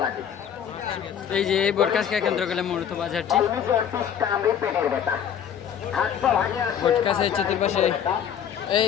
লাগে। এই যে এই বটকাছকে কেন্দ্র করে মূলত বাজারটি। পেটের ব্যথা, বটকাছের চতুর্পাশে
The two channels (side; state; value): right; quieter; 8.7 dB